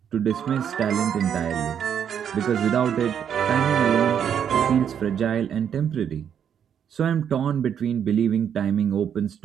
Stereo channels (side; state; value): left; quieter; 8.5 dB